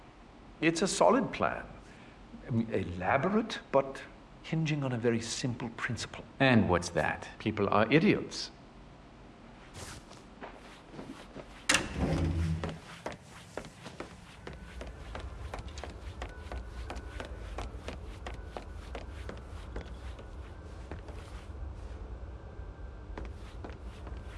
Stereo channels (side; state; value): both; identical; correlation 1.00